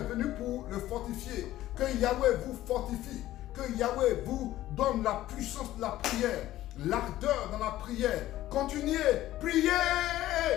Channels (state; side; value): quieter; right; 14.6 dB